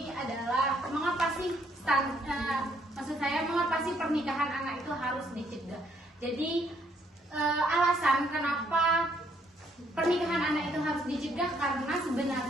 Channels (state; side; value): normal; both; correlation 0.68